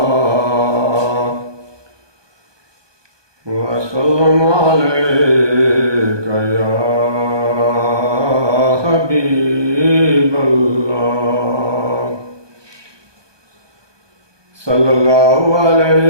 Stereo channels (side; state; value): left; late; 1.2 ms